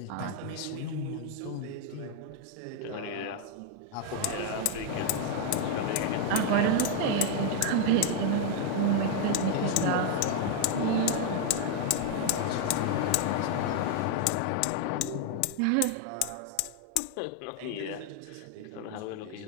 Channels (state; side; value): different; both; correlation 0.00